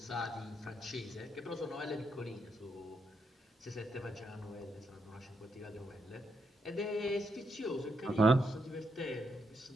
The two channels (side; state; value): both; normal; correlation 0.80